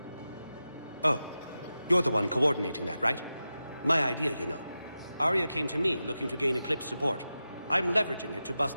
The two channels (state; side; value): inverted; both; correlation -0.92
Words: Oh, you're the one coordinating that, right? My idea, you know. Arya came to me looking to gain Eclipse support. I'm leveraging it to bust